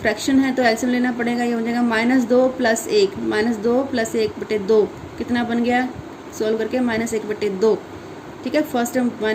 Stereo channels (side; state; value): both; identical; correlation 1.00